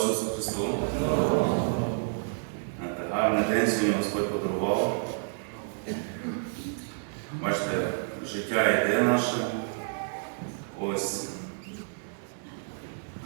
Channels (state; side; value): silent; left; digital silence